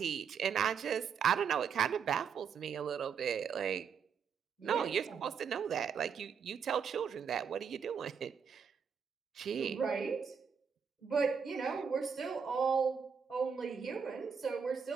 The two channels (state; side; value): quieter; left; 6.7 dB